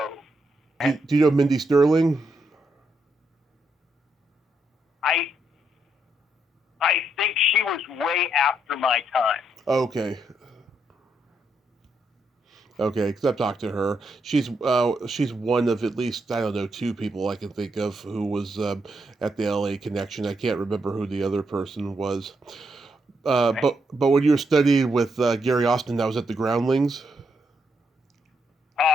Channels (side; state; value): both; normal; correlation 0.79